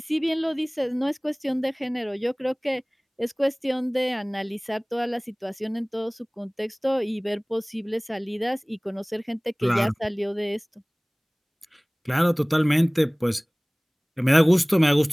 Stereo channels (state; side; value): identical; both; correlation 1.00